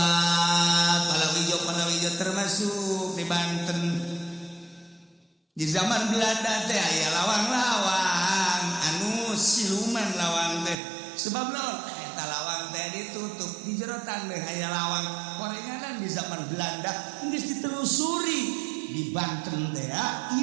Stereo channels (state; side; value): drops out; left; at 10.8 s